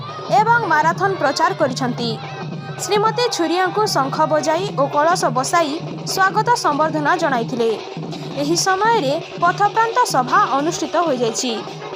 एवं माराथन प्रचार करिसेंती। श्रीमती छुरिया को शंख बजाई और कलश बसाई स्वागत संबर्धना जणाइथिले। एही समय रे पथप्रांत सभा अनुष्ठित हो जाइछि।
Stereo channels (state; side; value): identical; both; correlation 1.00